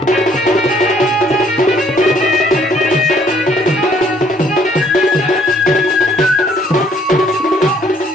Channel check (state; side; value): normal; both; correlation 0.63